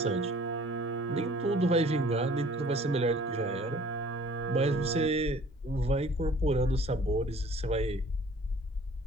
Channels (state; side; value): normal; both; correlation 0.52